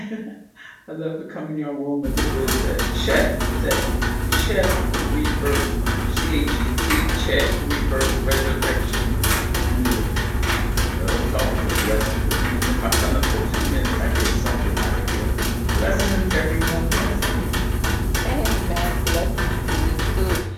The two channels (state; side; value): identical; both; correlation 1.00